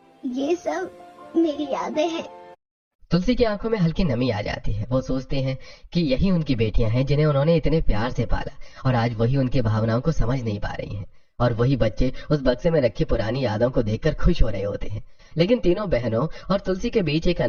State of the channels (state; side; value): identical; both; correlation 1.00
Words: ये सब मेरी यादें हैं। तुलसी की आंखों में हल्की नमी आ जाती है। वो सोचते हैं कि यही उनकी बेटियां हैं जिन्हें उन्होंने इतने प्यार से पाला, और आज वही उनकी भावनाओं को समझ नहीं पा रही हैं। और वही बच्चे उस बक्से में रखी पुरानी यादों को देखकर खुश हो रहे होते हैं। लेकिन तीनों बहनों और तुलसी के बीच एक